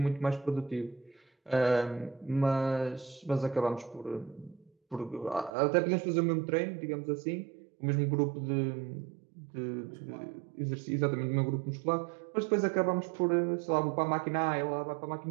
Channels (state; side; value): drops out; left; at 5.5 s